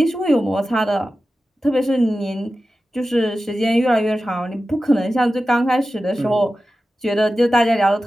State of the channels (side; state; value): both; normal; correlation 0.94